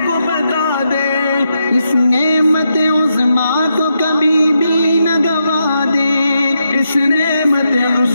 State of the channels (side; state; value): both; inverted; correlation -0.83